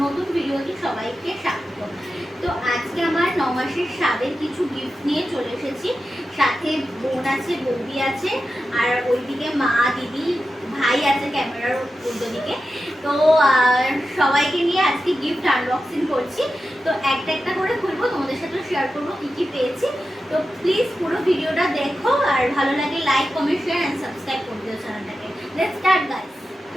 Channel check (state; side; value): normal; both; correlation 0.91